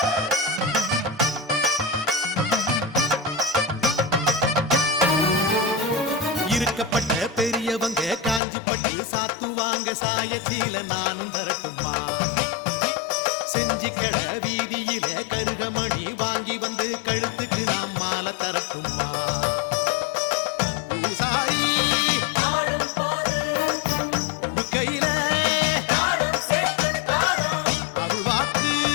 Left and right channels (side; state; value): right; drops out; at 8.4 s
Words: இருக்கப்பட்ட பெரியவங்க காஞ்சிப்பட்டு சாத்துவாங்க சாயச்சீல நானும் தரட்டுமா செஞ்சிக்கட வீதியில கருகமணி வாங்கி வந்து கழுத்துக்கு நாம் மாலை தரட்டுமா பூசாரி ஆடும் போது கையில தாளம் சேர்த்து தாளம் அருள்வாக்கு